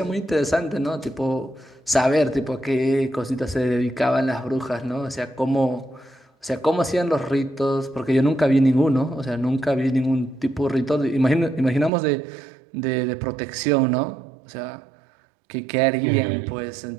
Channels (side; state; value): left; drops out; at 11.9 s